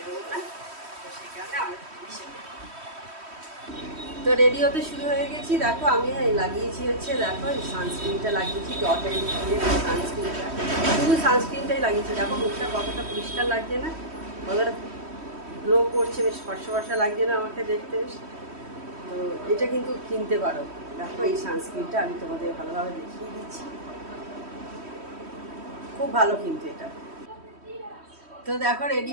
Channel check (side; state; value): left; late; 3.1 ms